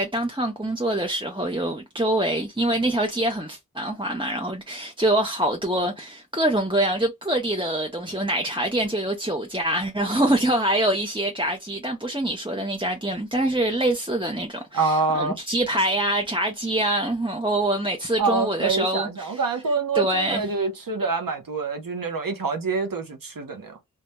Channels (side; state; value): both; normal; correlation 0.28